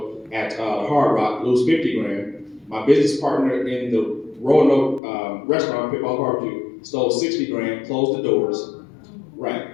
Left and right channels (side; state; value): right; drops out; at 5.0 s